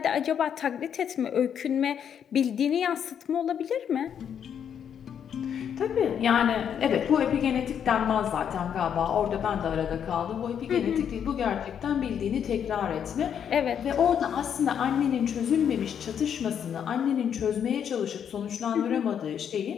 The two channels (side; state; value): right; quieter; 8.4 dB